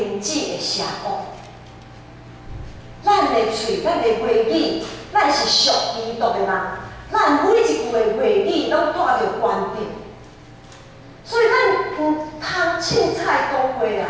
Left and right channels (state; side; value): identical; both; correlation 1.00